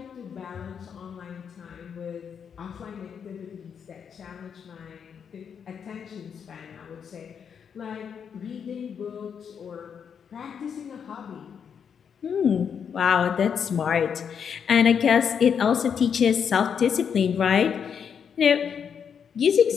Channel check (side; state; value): right; quieter; 7.3 dB